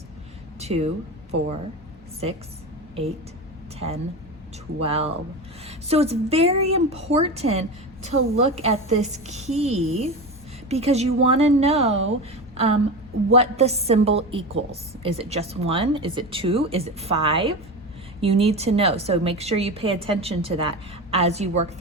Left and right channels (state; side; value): normal; both; correlation 0.24